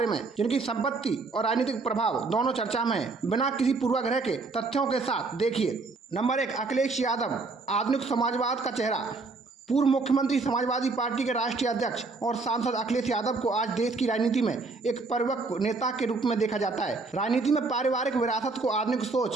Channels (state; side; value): quieter; left; 3.8 dB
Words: में जिनकी संपत्ति और राजनीतिक प्रभाव दोनों चर्चा में है। बिना किसी पूर्वाग्रह के तथ्यों के साथ देखिए। नंबर 1, अखिलेश यादव, आधुनिक समाजवाद का चेहरा। पूर्व मुख्यमंत्री, समाजवादी पार्टी के राष्ट्रीय अध्यक्ष और सांसद अखिलेश यादव को आज देश की राजनीति में एक परिपक्व नेता के रूप में देखा जाता है। राजनीति में पारिवारिक विरासत को आधुनिक